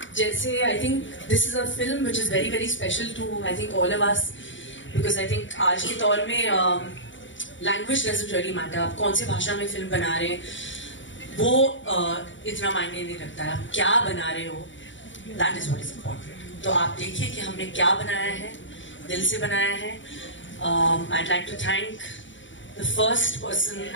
जैसे I think this is a film which is very very special to I think all of us, because I think आज के दौर में language doesn't really matter. आप कौन सी भाषा में film बना रहे हैं वो इतना मायने नहीं रखता है, आप क्या बना रहे हो, that is what is important. तो आप देखिए कि हमने क्या बनाया है, दिल से बनाया है. I'd like to thank the first person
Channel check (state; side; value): late; right; 0.55 ms